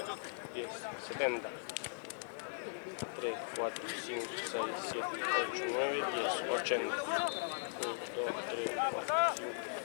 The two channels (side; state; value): right; silent; 52 dB below the other